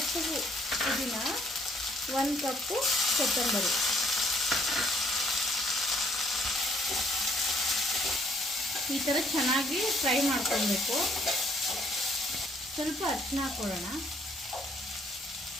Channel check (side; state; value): both; normal; correlation 0.65